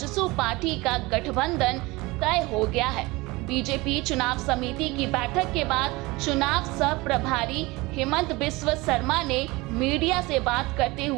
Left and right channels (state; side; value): quieter; left; 22.5 dB